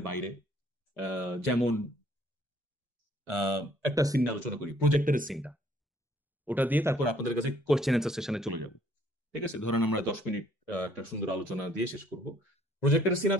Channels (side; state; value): both; normal; correlation 0.63